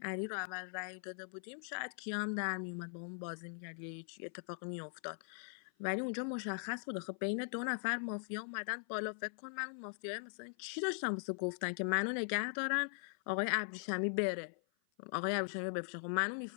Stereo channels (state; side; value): silent; right; 51 dB below the other